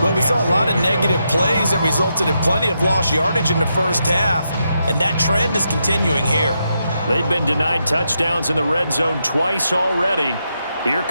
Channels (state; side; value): inverted; both; correlation -0.83